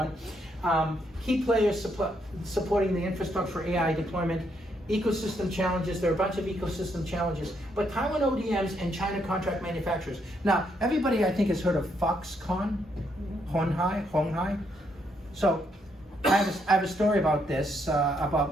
Key players supporting the infrastructure for AI deployment, ecosystem challenges. There are a bunch of ecosystem challenges, but Taiwan ODMs and China contract manufacturers. Now, everybody I think has heard of Foxconn, Honghai. So I have a story about this,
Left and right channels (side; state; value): both; normal; correlation 0.75